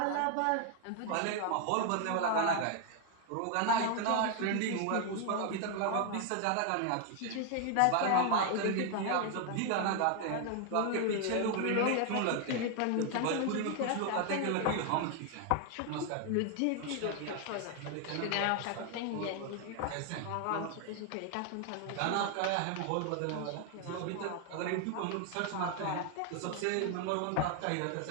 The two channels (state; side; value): different; both; correlation 0.00